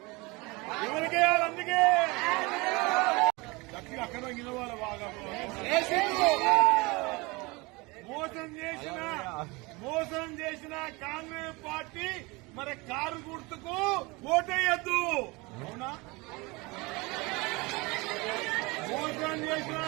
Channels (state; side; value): quieter; left; 25.1 dB